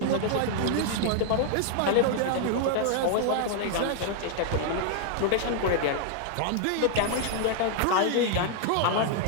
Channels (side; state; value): both; different; correlation -0.01